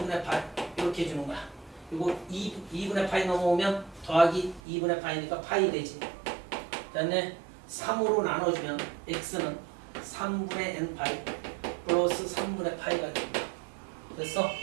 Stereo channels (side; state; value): left; drops out; at 4.6 s